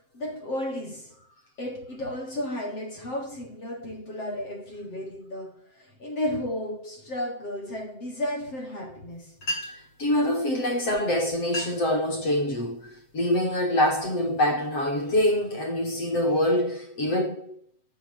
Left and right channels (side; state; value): right; late; 7.7 ms